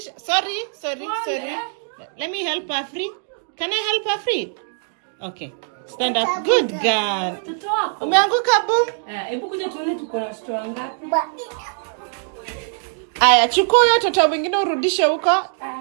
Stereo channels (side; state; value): left; silent; digital silence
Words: Sorry. Let me help her free. Can I help her free? Okay. Stand up. Good girl. Toto wako. Umeanguka boom. Hebu kuja tuone tuko na watoto wangapi. Aya, chukua huyo toto mwingine urudishe huko.